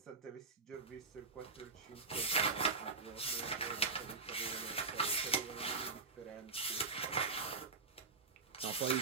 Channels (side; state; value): left; quieter; 4.3 dB